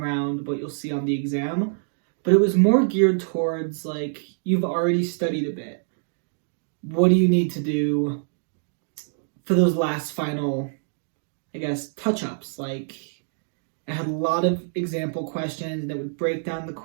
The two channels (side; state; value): left; silent; digital silence